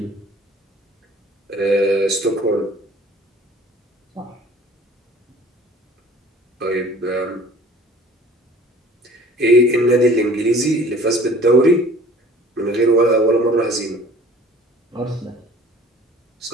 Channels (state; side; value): normal; both; correlation 0.49